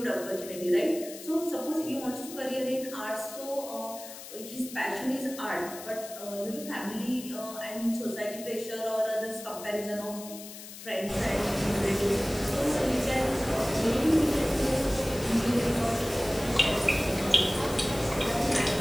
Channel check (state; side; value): noise; left; hiss, 13 dB below the sound